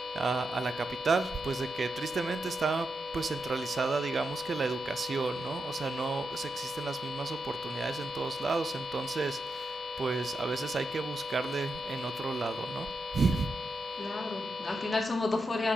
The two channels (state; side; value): normal; both; correlation 0.86